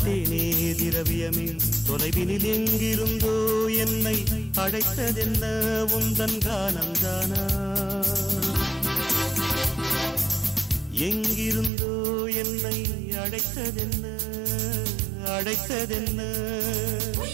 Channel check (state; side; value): drops out; left; at 11.7 s